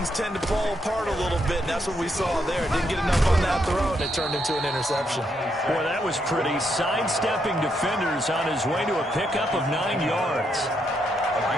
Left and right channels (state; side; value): normal; both; correlation 0.78